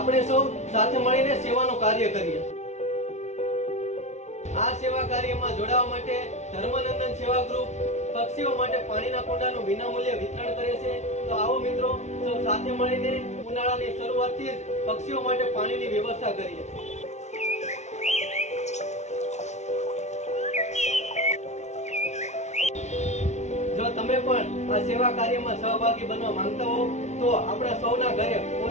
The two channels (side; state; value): right; late; 0.33 ms